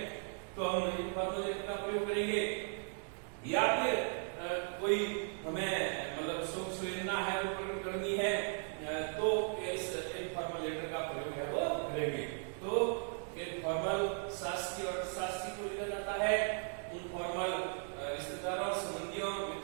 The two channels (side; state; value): left; silent; 53 dB below the other